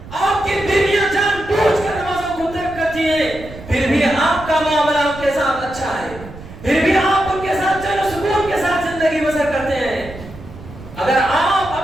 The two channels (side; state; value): right; noise; rumble, 15 dB below the sound